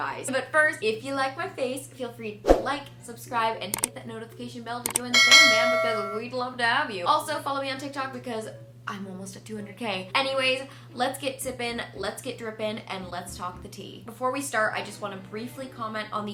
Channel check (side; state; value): both; identical; correlation 1.00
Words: But first, if you like my face, feel free to like, subscribe, and hit that notification bell to join the fam bam because we'd love to have you. Also, follow me on TikTok because I'm almost at 200K. Anyways, let's get sippin', let's get drippin', and let's talk the tea. Before we start, I just want to briefly comment on